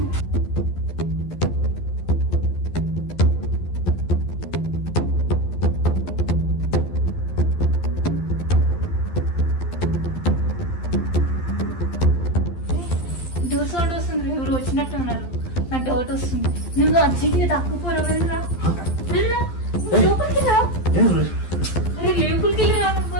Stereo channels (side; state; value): right; late; 12 ms